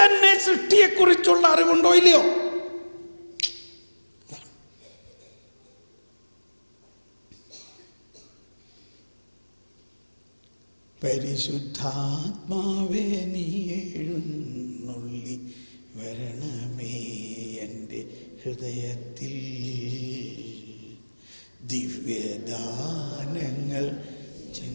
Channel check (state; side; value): inverted; both; correlation -1.00